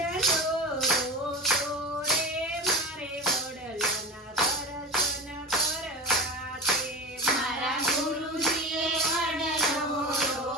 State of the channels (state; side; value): normal; both; correlation 0.27